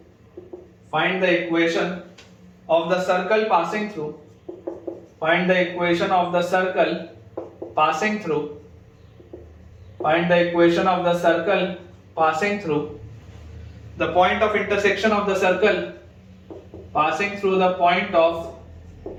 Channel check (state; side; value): identical; both; correlation 1.00